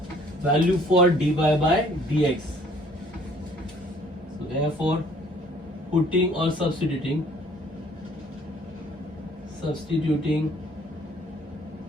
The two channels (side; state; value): both; normal; correlation 0.58